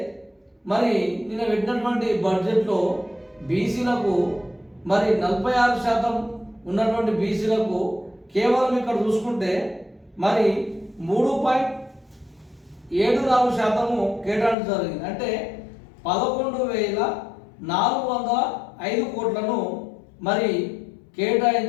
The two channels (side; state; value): right; drops out; at 14.6 s